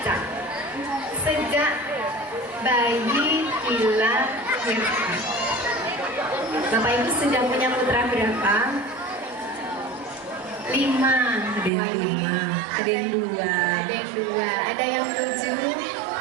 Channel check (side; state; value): left; drops out; at 11.7 s